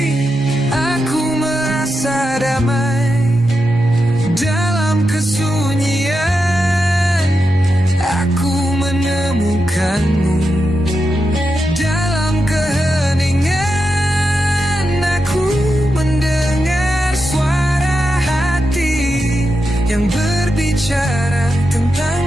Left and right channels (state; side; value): normal; both; correlation 0.88